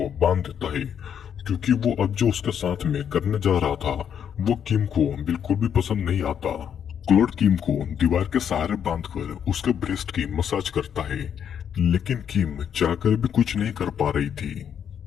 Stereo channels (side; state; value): right; quieter; 8.4 dB